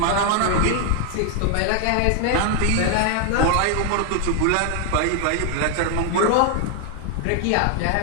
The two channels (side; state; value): both; different; correlation 0.00